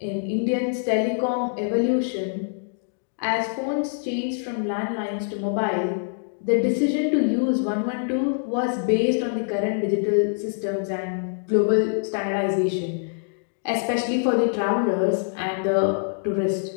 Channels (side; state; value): right; silent; digital silence